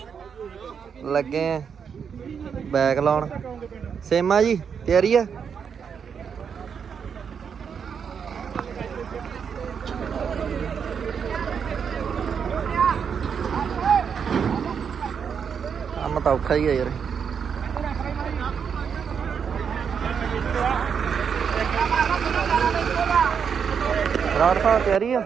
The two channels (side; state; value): left; quieter; 6.9 dB